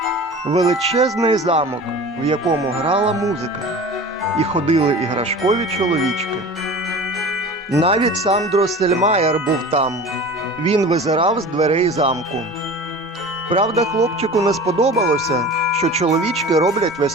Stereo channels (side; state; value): both; normal; correlation 0.37